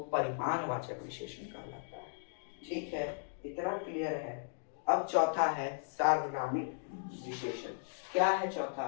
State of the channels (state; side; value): silent; right; digital silence